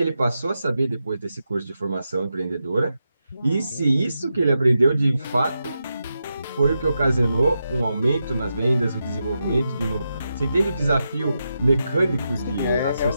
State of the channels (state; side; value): inverted; both; correlation -0.87